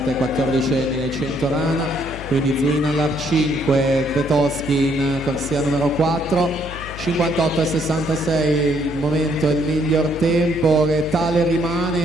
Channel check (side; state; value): left; noise; hum, 12 dB below the sound